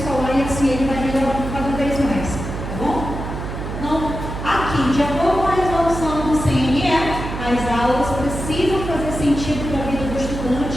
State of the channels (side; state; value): right; noise; hum, 6 dB below the sound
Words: e assim ele vai melhorando cada vez mais, tá bom? Então, aqui, de acordo com a resolução do CNE, as aulas precisam fazer sentido para a vida do